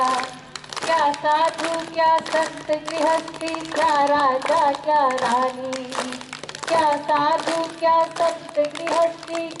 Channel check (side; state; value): both; identical; correlation 1.00